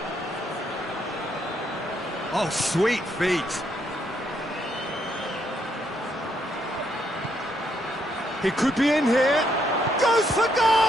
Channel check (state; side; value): normal; both; correlation 0.74